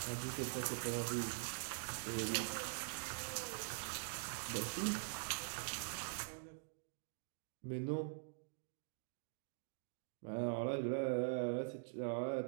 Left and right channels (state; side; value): silent; left; digital silence